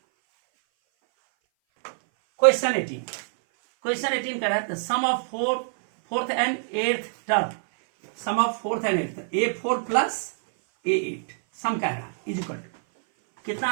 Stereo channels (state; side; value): silent; left; 57 dB below the other